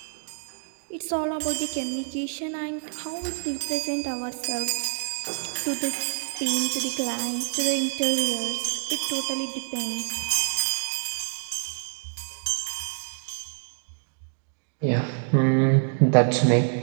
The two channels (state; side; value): silent; left; digital silence